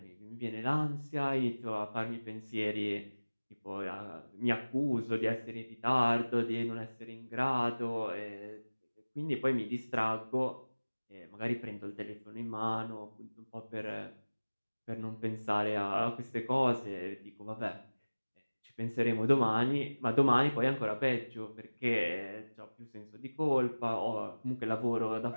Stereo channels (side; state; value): both; inverted; correlation -1.00